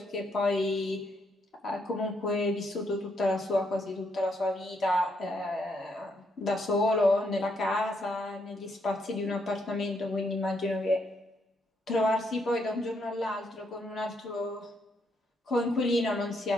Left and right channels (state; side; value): normal; both; correlation 0.76